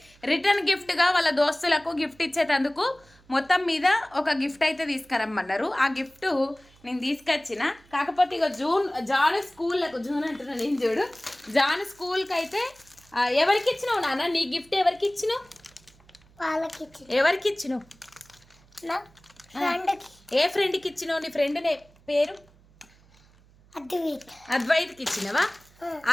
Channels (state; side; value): noise; right; hum, 28 dB below the sound